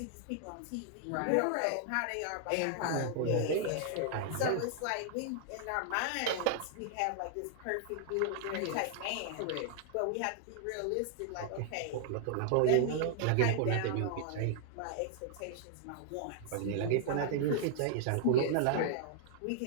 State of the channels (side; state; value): both; different; correlation 0.00